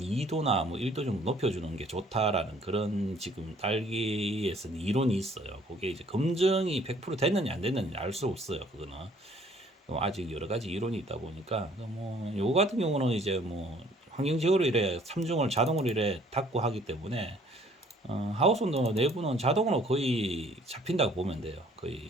뭐 1도 정도 높여주는 게 좋다라는 그런 지금 딸기에서는 이론이 있어요. 그게 이제 검증이 100% 됐느냐 안 됐느냐 알 수 없어요. 그거는 아직 여러 가지 이론이 있다 보니까, 뭐 요 같은 경우는 이제 뭐 환경지역으로 이래 삼중을 자동으로 이래 닫고 하기 때문에 하우스 온도 내부는 자동으로 거의 잡힌다고 보면 돼요. 거의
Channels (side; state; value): both; normal; correlation 0.59